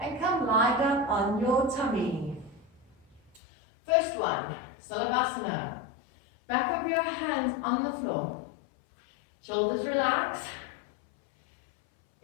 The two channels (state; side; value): drops out; right; at 3.4 s